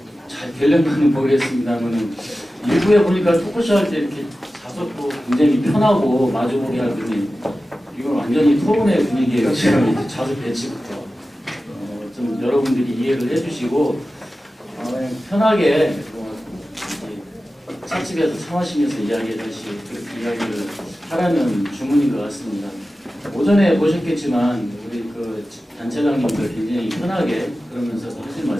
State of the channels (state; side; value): normal; both; correlation 0.94